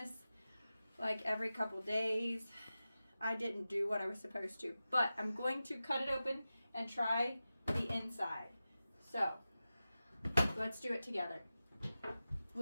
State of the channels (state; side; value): inverted; both; correlation -0.94